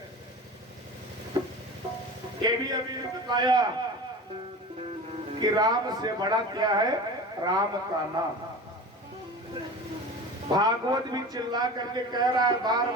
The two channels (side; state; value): both; normal; correlation 0.34